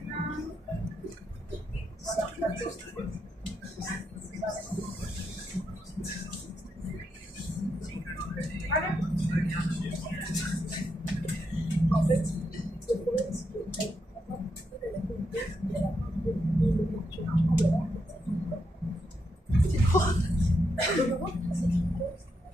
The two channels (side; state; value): both; normal; correlation 0.82